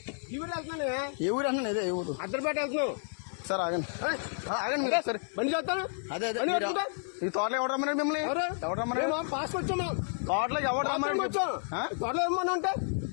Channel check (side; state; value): right; silent; 57 dB below the other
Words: ఏ ఊరు అన్నా? అదే ఏ ఊరు? అద్దరిపేట వెళ్తున్నావు సార్. ఆగండి ఆగండి సరే బండి చేస్తాను. అదే అదే ఈ తోటలో ఎవరు రమ్మన్నాడు మిమ్మల్ని? ఎవరు రమ్మన్నాడు? పాస్ వచ్చామా? తోటలోకి ఎవరు రమ్మన్నాడు? తోటలో ఏమన్నా అంటే